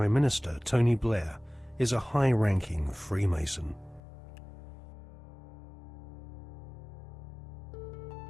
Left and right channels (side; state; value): right; drops out; at 4.0 s